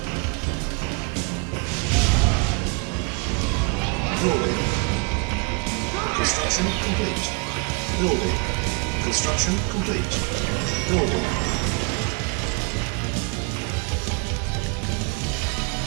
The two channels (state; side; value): quieter; left; 34.5 dB